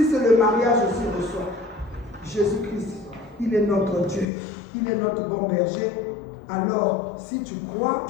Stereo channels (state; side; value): drops out; right; at 4.2 s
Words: c'est le mariage aussi, reçois. Jésus-Christ, il est notre Dieu, il est notre bon berger. Alors, si tu crois,